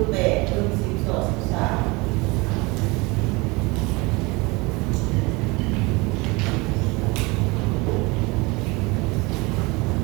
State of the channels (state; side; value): quieter; left; 25.3 dB